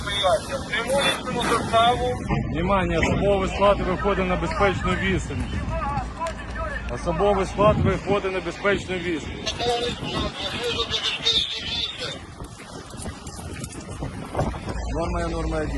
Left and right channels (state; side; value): identical; both; correlation 1.00